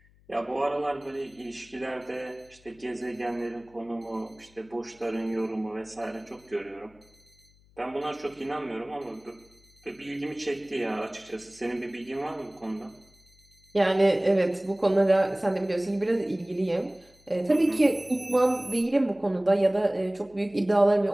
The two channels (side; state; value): left; noise; hum, 30 dB below the sound